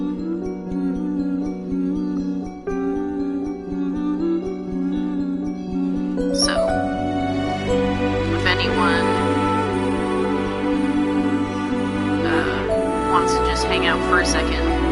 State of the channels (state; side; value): identical; both; correlation 1.00